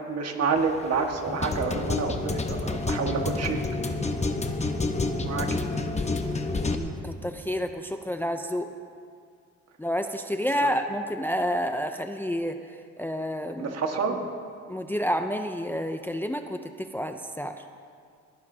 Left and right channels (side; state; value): both; normal; correlation 0.54